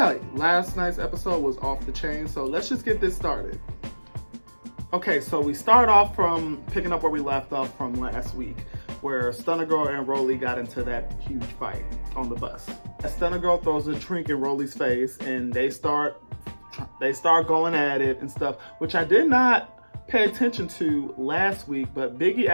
last night's episode was off the chain, so let's just get this started. Okay, so we start off from picking up where we left off from last week, where Stunner Girl and Rolly got into that huge fight on the bus. Stunner Girl throws a drink in Rolly's face, and they start going at it and stuff, which I did not pay attention to last week, but Biggie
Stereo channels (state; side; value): inverted; both; correlation -1.00